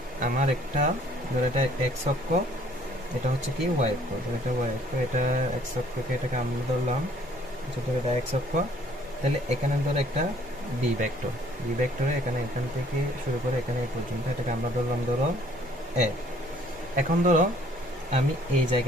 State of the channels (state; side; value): normal; both; correlation 0.59